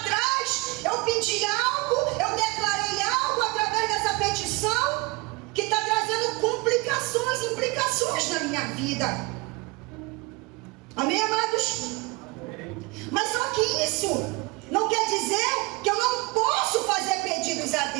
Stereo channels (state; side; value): quieter; left; 25.8 dB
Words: eu pedi algo, eu declarei algo através dessa petição que está trazendo complicações, implicações na minha vida. Amém, amados? Mas só que isso não quer dizer que eu não posso fazer pedidos a